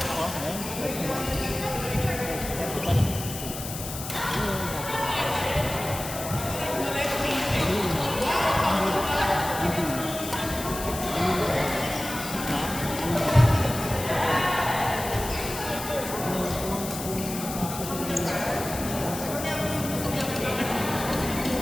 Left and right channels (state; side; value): noise; left; hiss, 8 dB below the sound